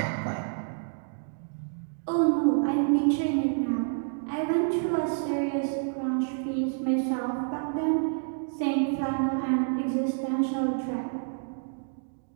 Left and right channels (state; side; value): silent; left; digital silence